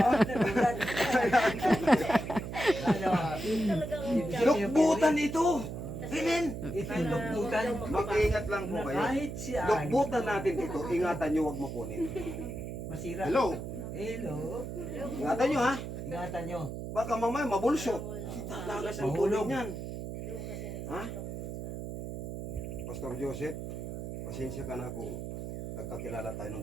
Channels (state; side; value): noise; right; hum, 7 dB below the sound